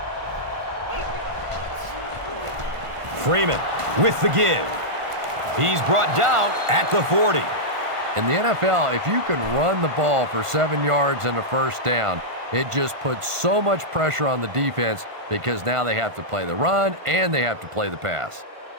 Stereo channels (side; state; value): left; late; 1.5 ms